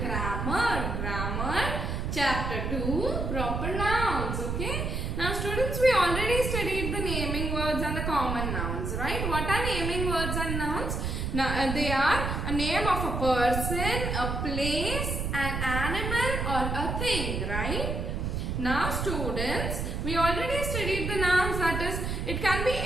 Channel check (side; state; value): right; noise; rumble, 2 dB below the sound